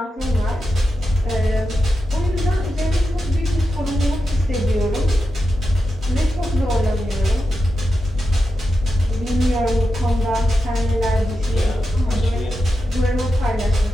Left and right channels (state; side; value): normal; both; correlation 0.89